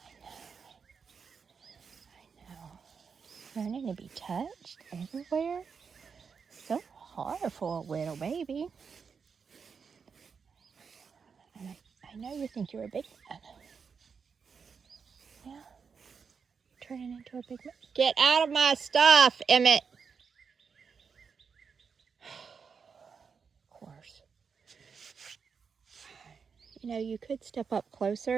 I know. Learning to be touched everywhere. So hard for a little baby. And I know you think you're a big man. Yeah. Turning into a big man. Get out of my stuff, Emmett. Of course. You know, you could step up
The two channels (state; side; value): quieter; left; 5.9 dB